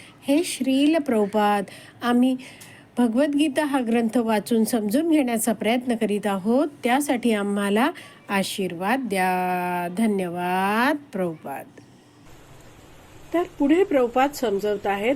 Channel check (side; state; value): both; identical; correlation 1.00